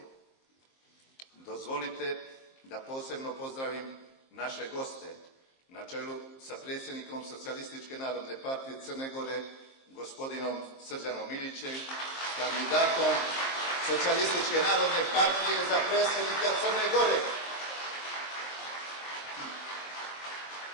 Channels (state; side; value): late; right; 23 ms